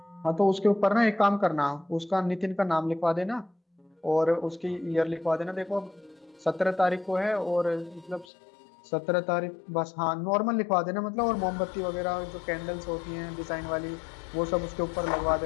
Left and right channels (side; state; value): right; drops out; at 8.2 s